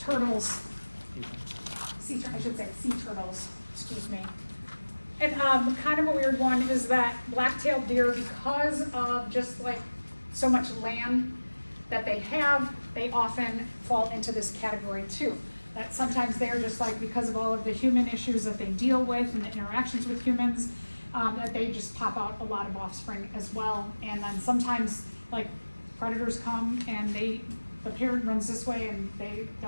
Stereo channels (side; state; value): both; inverted; correlation -1.00